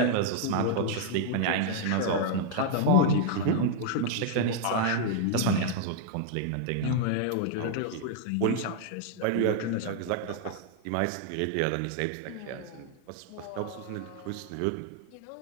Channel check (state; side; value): different; both; correlation -0.01